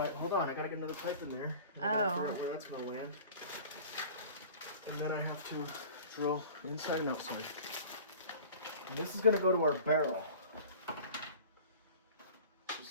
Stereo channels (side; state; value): both; inverted; correlation -0.42